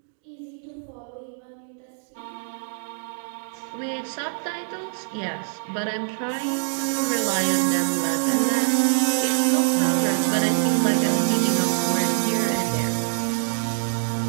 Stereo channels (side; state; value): left; silent; digital silence